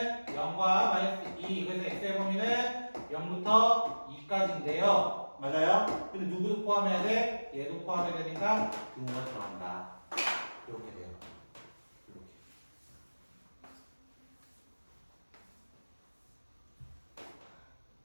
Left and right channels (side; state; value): both; inverted; correlation -1.00